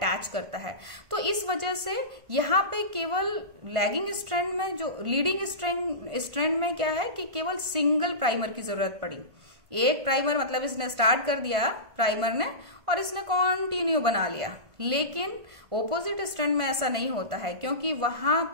करता है। तो इस वजह से यहाँ पे केवल लैगिंग स्ट्रैंड में, जो लीडिंग स्ट्रैंड में क्या है कि केवल सिंगल प्राइमर की जरूरत पड़ी। एक प्राइमर मतलब इसने स्टार्ट कर दिया प्राइमर ने और इसने कंटिन्यू बना लिया। लेकिन ओपोजिट स्ट्रैंड में ऐसा नहीं होता है, क्योंकि वहां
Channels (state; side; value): late; left; 1.5 ms